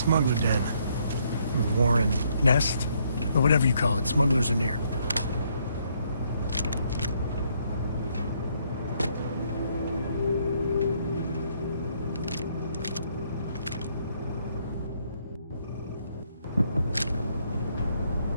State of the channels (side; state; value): both; inverted; correlation -0.70